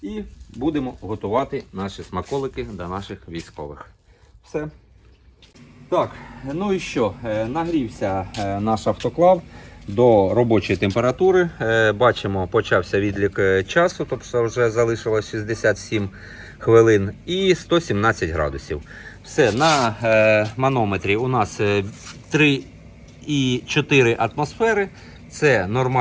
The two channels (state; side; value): identical; both; correlation 1.00